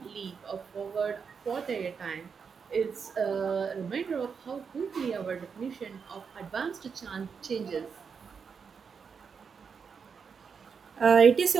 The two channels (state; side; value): quieter; left; 6.1 dB